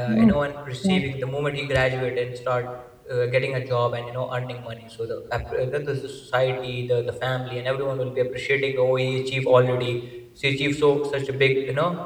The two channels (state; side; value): identical; both; correlation 1.00